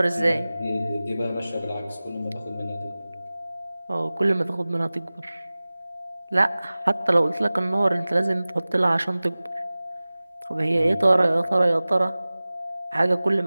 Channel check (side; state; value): both; inverted; correlation -0.98